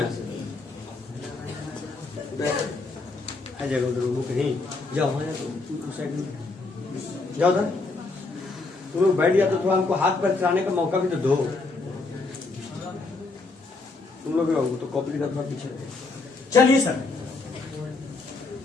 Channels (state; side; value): quieter; right; 3.6 dB